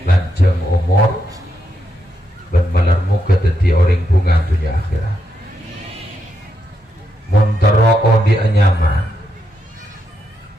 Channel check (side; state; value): both; normal; correlation 0.82